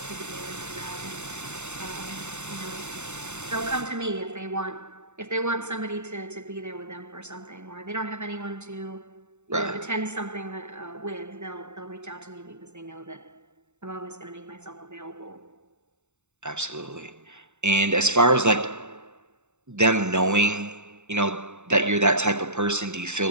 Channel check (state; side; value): late; left; 0.83 ms